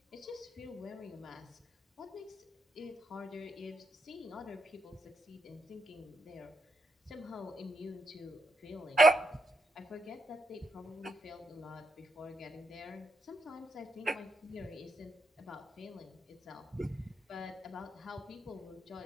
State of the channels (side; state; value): both; normal; correlation 0.81